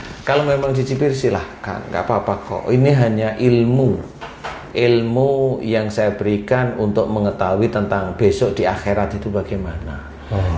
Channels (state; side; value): identical; both; correlation 1.00